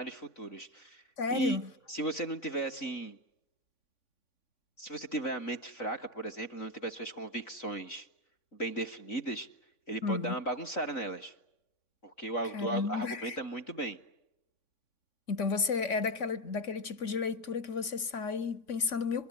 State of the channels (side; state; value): right; late; 3.5 ms